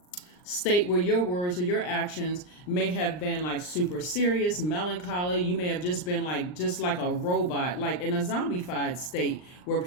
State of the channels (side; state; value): right; late; 39 ms